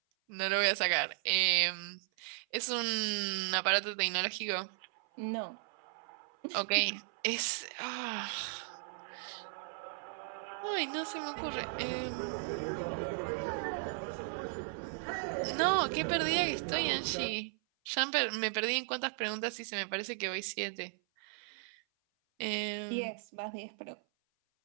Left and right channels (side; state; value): left; silent; 54 dB below the other